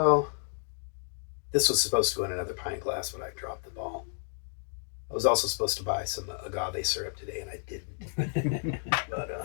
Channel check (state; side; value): silent; right; digital silence